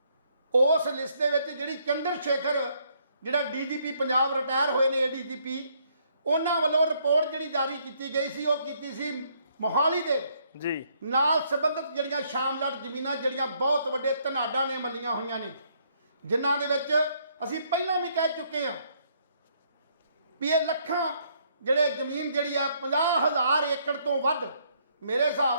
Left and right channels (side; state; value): both; inverted; correlation -0.69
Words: ਉਸ ਲਿਸਟ ਦੇ ਵਿੱਚ ਜਿਹੜੀ ਚੰਦਰ ਸ਼ੇਖਰ ਜਿਹੜਾ ਡੀਜੀਪੀ ਪੰਜਾਬ ਰਿਟਾਇਰ ਹੋਏ ਨੇ ਏਡੀਜੀਪੀ, ਉਹਨਾਂ ਵੱਲੋਂ ਰਿਪੋਰਟ ਜਿਹੜੀ ਜਾਰੀ ਕੀਤੀ ਗਈ ਸੀ ਉਹ ਕੀਤੀ ਸੀ ਮੋਹਾਲੀ ਦੇ ਜੀ ਨਾਲ ਸੰਬੰਧਿਤ ਜਿਹੜੀਆਂ ਸ਼ਾਮਲਾਟ ਜ਼ਮੀਨਾਂ ਜਿਹੜੀਆਂ ਬਹੁਤ ਵੱਡੇ ਧਨਾਡਾਂ ਨੇ ਮੱਲੀਆਂ ਹੋਈਆਂ ਨੇ, ਜਿਨ੍ਹਾਂ ਦੇ ਵਿੱਚ ਅਸੀਂ ਪਹਿਲਾਂ ਵੀ ਕਹਿ ਚੁੱਕੇ ਹਾਂ ਵੀ ਇਹ ਲੱਖਾਂ ਜਿਹੜੇ ਜ਼ਮੀਨ ਜਿਹੜੀ ਆ 50,000 ਏਕੜ ਤੋਂ ਵੱਧ, ਮੇਰੇ